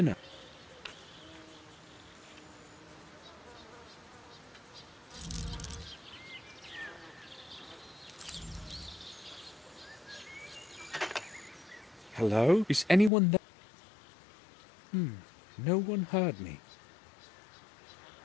Hello? Is anyone there? No one heard me.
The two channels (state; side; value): drops out; right; at 13.1 s